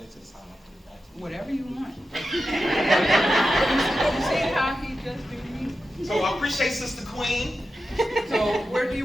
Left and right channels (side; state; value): both; normal; correlation 0.91